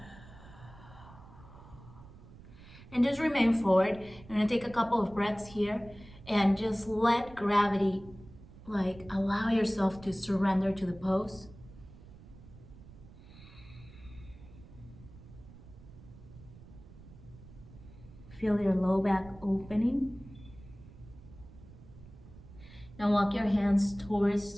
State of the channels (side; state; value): right; noise; rumble, 19 dB below the sound